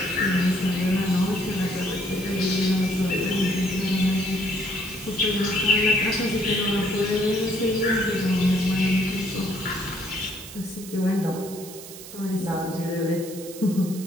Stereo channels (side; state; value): right; noise; hiss, 14 dB below the sound